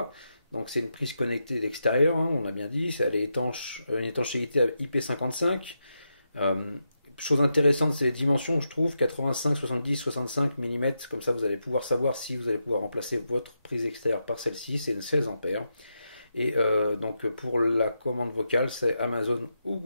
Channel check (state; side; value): inverted; both; correlation -0.85